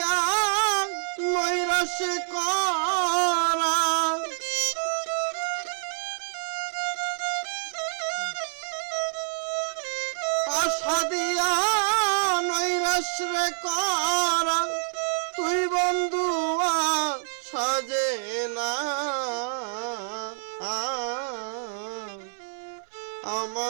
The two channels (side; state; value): left; silent; 60 dB below the other